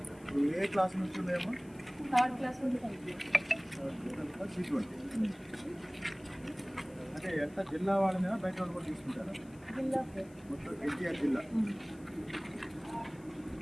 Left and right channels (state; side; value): noise; left; hiss, 27 dB below the sound